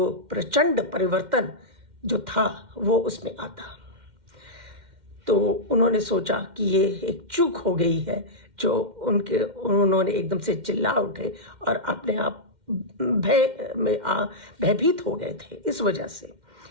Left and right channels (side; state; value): left; late; 2.1 ms